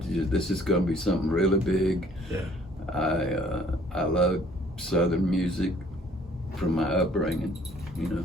this is going to be something really big. Yeah. I love Southern music from my upbringing, you know,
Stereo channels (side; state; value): both; normal; correlation 0.58